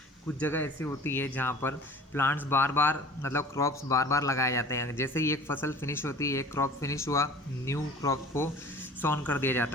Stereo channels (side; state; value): both; normal; correlation 0.44